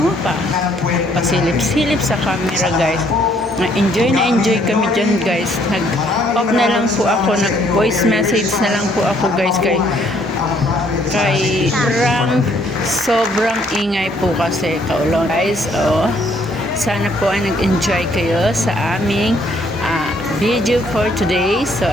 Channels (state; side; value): normal; both; correlation 0.66